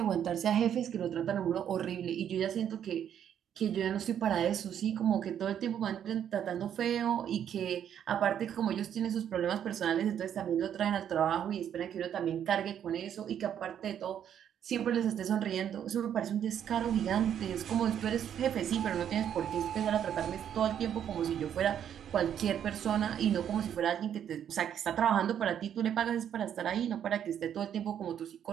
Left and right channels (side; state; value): left; quieter; 9.4 dB